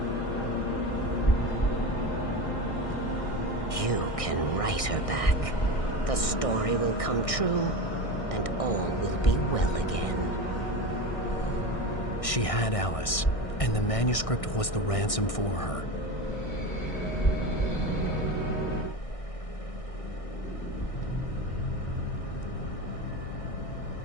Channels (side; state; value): right; late; 1.6 ms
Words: You can write her back. The story will come true, and all will be well again. She had Alice, and the manuscript was the ransom for her.